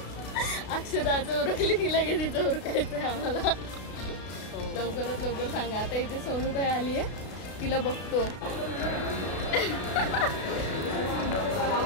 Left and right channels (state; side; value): late; right; 32 ms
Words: अक्षदाचं उरकली की लगेच तिचं उरकायचंय आम्हाला। लवकरात लवकर सांगा। आता इथे सोनूताई आली आहे, तिला बघतो।